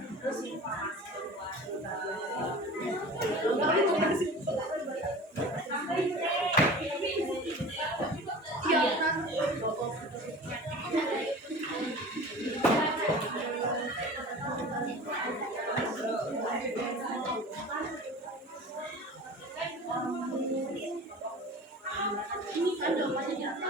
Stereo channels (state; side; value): normal; both; correlation 0.38